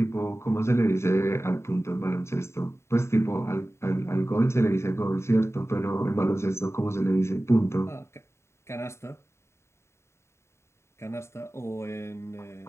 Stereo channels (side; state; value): right; late; 0.13 ms